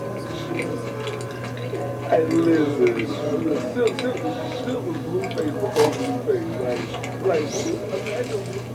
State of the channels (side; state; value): both; identical; correlation 1.00